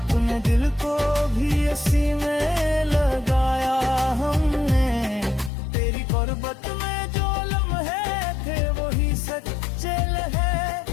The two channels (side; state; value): right; drops out; at 5.5 s